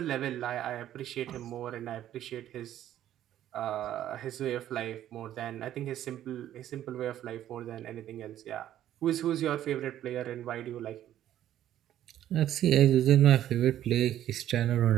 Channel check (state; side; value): quieter; left; 11.9 dB